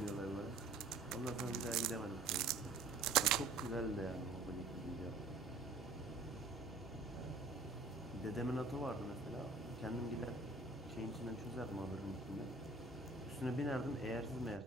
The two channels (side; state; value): left; quieter; 3.1 dB